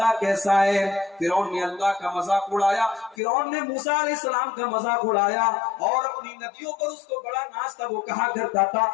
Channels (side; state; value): right; drops out; at 3.2 s